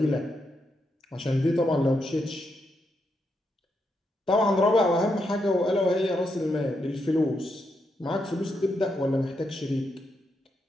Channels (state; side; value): normal; both; correlation 0.81